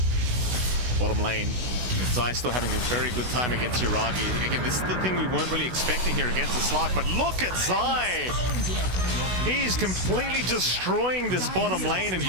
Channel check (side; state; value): left; late; 17 ms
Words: Bottom lane, Zai still having a very good time against Yuragi. Again, this is the thing we weren't really expecting here against the Slug, but look at Zai! He's completely destroying this bottom lane, and